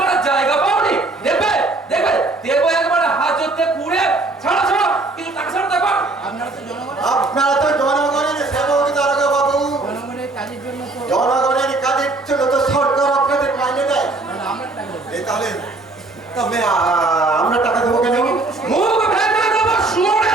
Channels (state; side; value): quieter; left; 3.2 dB